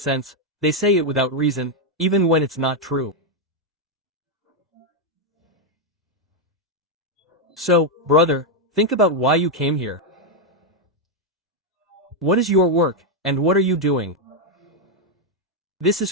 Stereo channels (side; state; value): both; normal; correlation 0.01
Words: they say it without reason, even when it's not true. So, brother, think about why you came here. What is your work, and what are you doing? This is